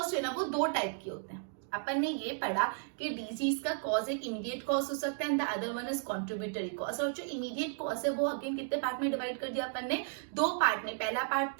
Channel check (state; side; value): silent; left; digital silence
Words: जो है ना वो दो टाइप के होते हैं। अपन ने ये पढ़ा कि डिजीज का कॉज एक इमीडिएट कॉज हो सकता है and the other one is contributory cause. और जो इमीडिएट कॉज है वो अगेन कितने पार्ट में डिवाइड कर दिया अपन ने? दो पार्ट में। पहला पार्ट